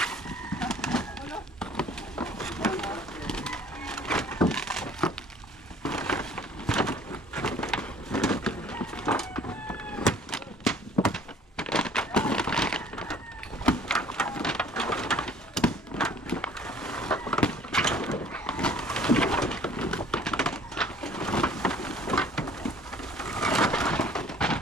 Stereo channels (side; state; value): both; normal; correlation 0.53